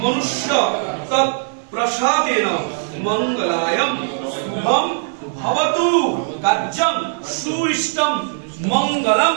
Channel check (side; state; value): left; silent; 56 dB below the other